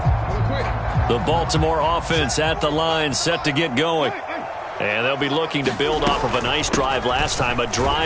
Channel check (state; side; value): identical; both; correlation 1.00